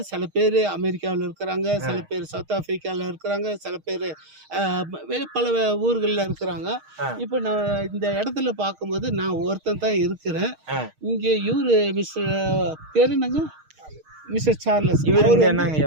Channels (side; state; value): left; late; 6.4 ms